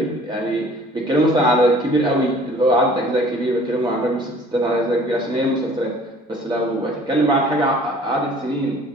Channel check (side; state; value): both; normal; correlation 0.52